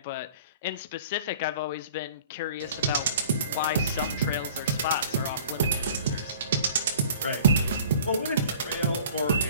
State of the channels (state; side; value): inverted; both; correlation -0.48